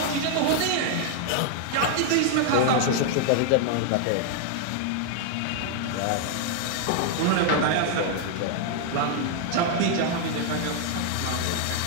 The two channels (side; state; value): both; different; correlation 0.00